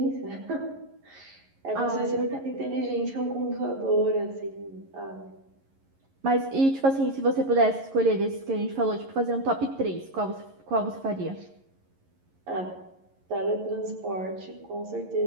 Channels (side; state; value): left; late; 11 ms